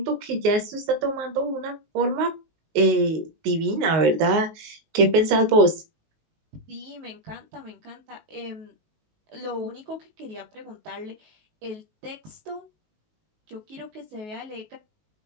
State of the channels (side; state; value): left; late; 19 ms